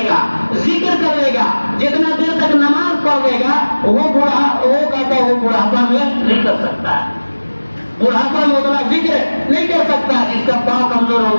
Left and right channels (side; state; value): both; inverted; correlation -1.00